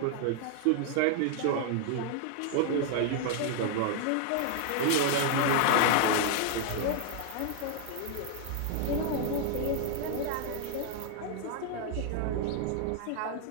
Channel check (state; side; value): different; both; correlation 0.00